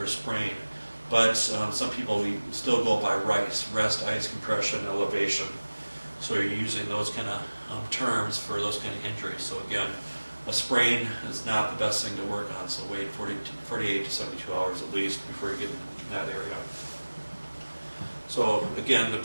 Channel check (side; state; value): both; inverted; correlation -1.00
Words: a sprain. But some people, we still go by RICE, rest, ice, compression, elevation. So you're using those kind of terms for those kind of injuries. So again, a sprain is not the best thing to work on, so wait 48 to 72 hours at least before you get in that area. So again, the